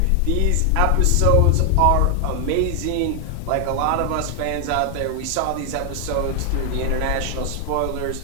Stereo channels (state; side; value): different; both; correlation 0.00